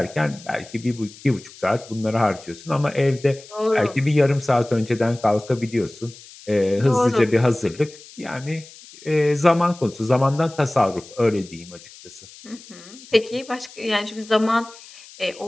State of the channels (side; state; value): left; noise; hiss, 20 dB below the sound